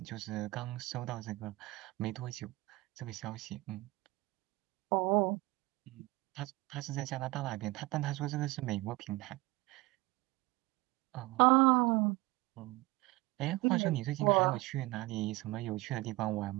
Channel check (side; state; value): left; quieter; 21.1 dB